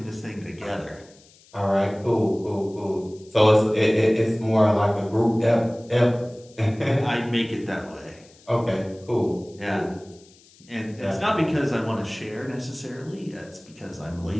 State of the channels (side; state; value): left; noise; hiss, 27 dB below the sound